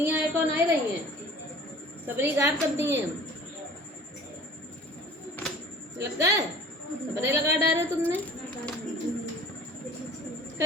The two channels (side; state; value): both; normal; correlation 0.46